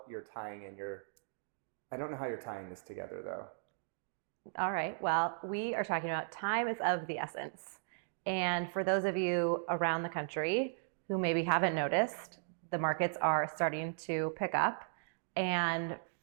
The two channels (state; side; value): silent; left; digital silence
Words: you're tying this together, though. All right. Well, we are talking about time is of the essence. And for those of you around the country who maybe haven't noticed, the markets are starting to pick up. And